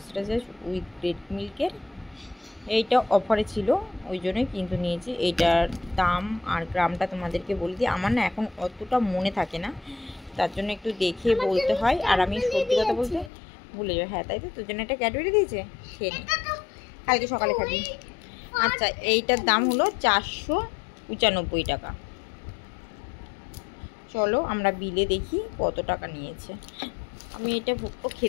উইথ রেড মিল্কের। এইটা অফারে ছিল, ওই জন্যই কিন্তু নিয়েছি। এইটার দাম আর গ্রামটা তোমাদেরকে বলে দিই। আমার না এখন অতটা মনে থাকে না, তার জন্য একটু দেখে বলতে হয়। আর আমি সত্যি কথা বলতে ভুলে যাই। হ্যাঁ, তাই তো, তোর জন্য একটা ক্যাডবেরি দিয়েছে, খেয়ে নে, কালকে সকালে খাবি। আচ্ছা, এইটার দাম হলো 495 টাকা। চলো আমরা বিলে দেখি কত টাকা নিয়েছে। আমি এটা ভুট্টো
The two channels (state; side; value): drops out; right; at 13.3 s